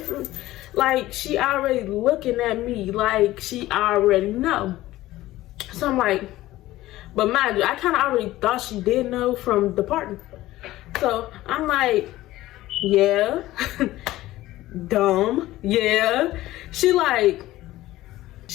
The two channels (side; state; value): right; quieter; 16.3 dB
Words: Like, she already looking at me like she already know. So I'm like, but mind you, I kind of already thought she did know from the party. So I'm like, yeah, dumb, yeah. She like,